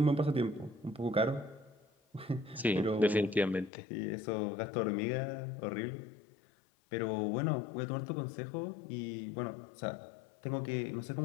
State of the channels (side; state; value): right; drops out; at 3.7 s